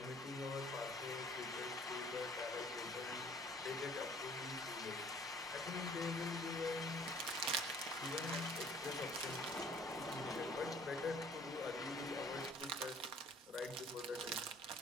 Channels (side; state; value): both; normal; correlation 0.54